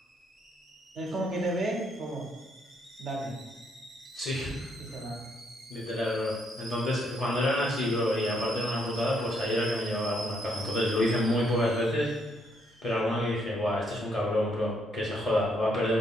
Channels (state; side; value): normal; both; correlation 0.73